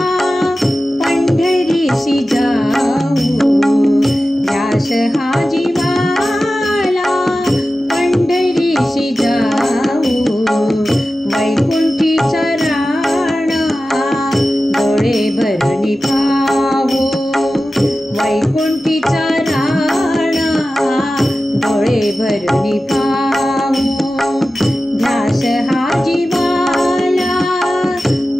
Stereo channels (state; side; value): normal; both; correlation 0.94